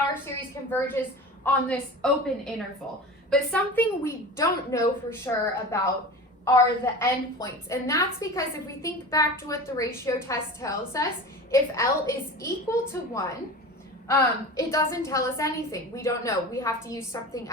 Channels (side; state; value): both; normal; correlation 0.33